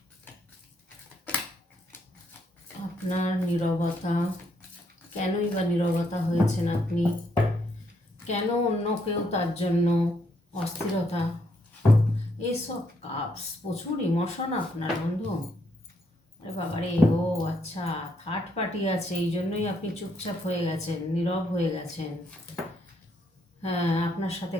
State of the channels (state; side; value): normal; both; correlation 0.74